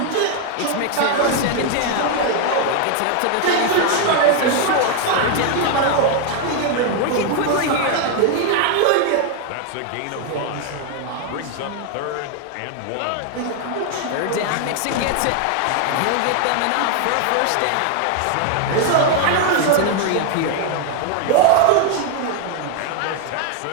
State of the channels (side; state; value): both; different; correlation 0.00